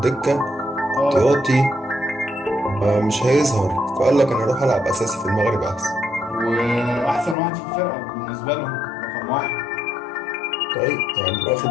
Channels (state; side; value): drops out; right; at 7.4 s